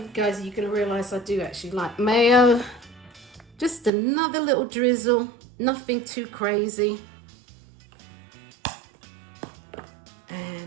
guys, you're going to realize I do actually like mayo. Just another little drizzle, nothing too crazy.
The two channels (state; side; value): drops out; left; at 3.9 s